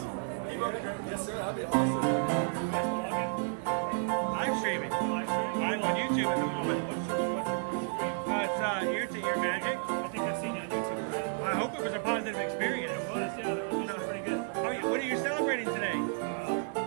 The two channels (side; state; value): left; silent; digital silence